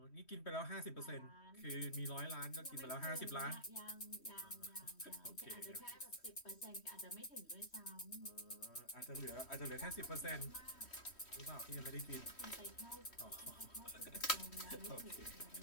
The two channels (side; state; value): right; late; 3.1 ms